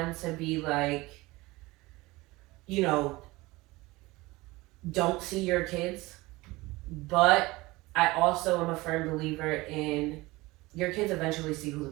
to be like, don't see your kids, but I also am a firm believer in your kids eventually see who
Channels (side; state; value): left; quieter; 21.1 dB